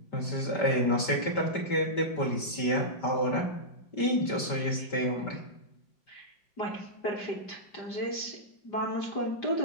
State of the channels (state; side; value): late; right; 5.1 ms